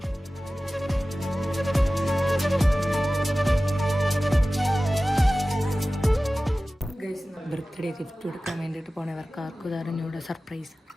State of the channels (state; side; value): normal; both; correlation 0.96